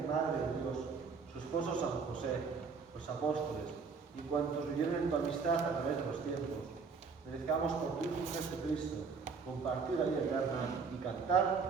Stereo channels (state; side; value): quieter; left; 5.1 dB